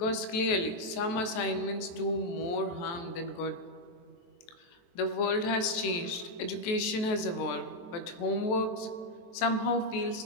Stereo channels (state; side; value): late; right; 23 ms